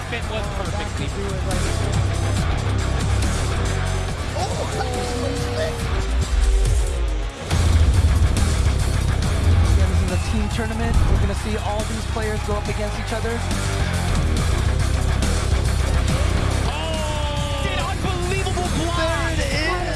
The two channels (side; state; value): both; identical; correlation 1.00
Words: Tournament. We're going to see all these players go up against each other. Oh, an unbelievable block. There it is. What